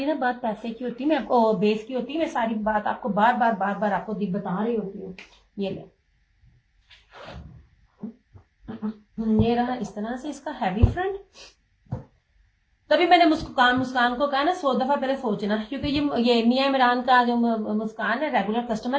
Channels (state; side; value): identical; both; correlation 1.00